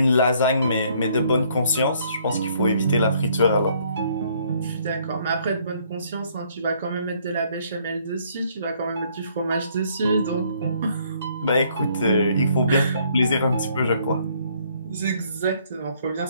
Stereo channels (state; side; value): inverted; both; correlation -0.65